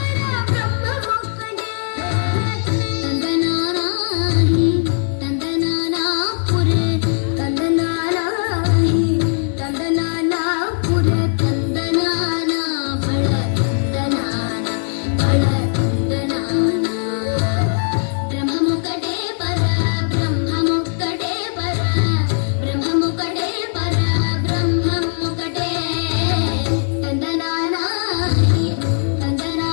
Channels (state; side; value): silent; right; digital silence